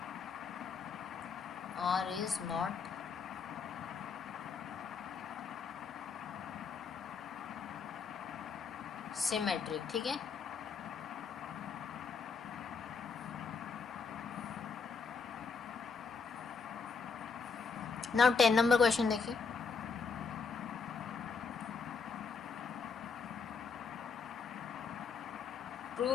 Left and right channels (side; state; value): right; quieter; 5.3 dB